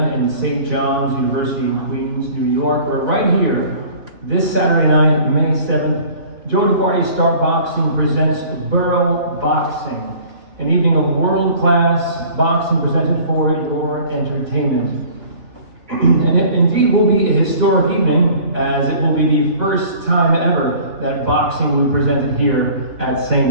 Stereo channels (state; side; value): late; left; 3.3 ms